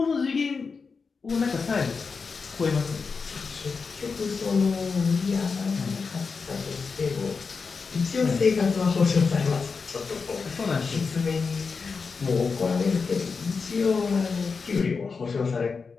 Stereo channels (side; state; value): right; quieter; 5.0 dB